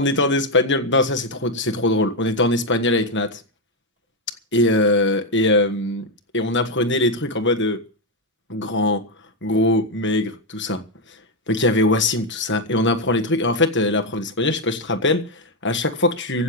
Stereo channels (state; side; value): normal; both; correlation 0.05